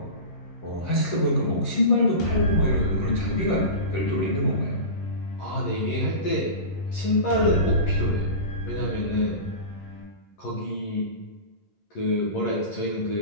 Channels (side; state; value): right; late; 11 ms